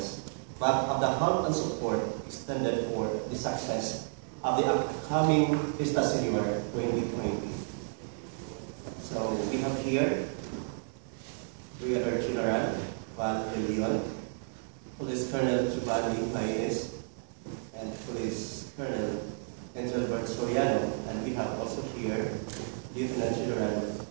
but of the help and support extended for the success of the upcoming Fiesta Señor 2020. So we have here Brigadier General Val de Leon, Police Colonel Giovanni Paez, and Police Colonel Engelbert Soriano, and we have also here Lieutenant General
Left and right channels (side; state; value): left; silent; 55 dB below the other